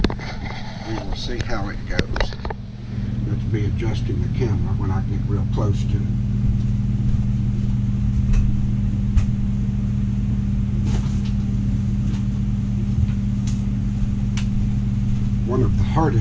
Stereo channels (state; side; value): identical; both; correlation 1.00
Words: it goes. Let's be adjusting the camera when I get real close to it. One of the